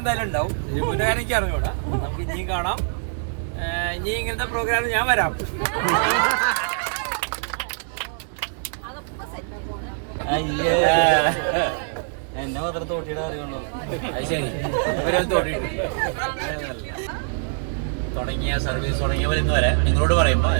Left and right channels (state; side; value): silent; left; 63 dB below the other